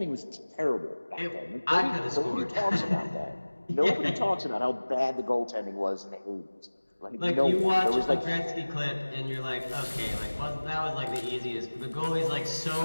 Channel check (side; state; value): both; inverted; correlation -1.00